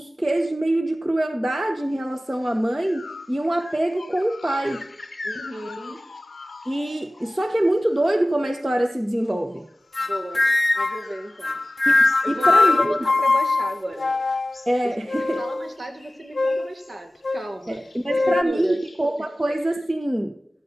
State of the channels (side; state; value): both; normal; correlation 0.96